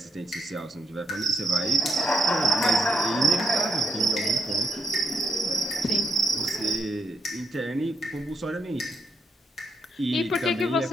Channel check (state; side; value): normal; both; correlation 0.77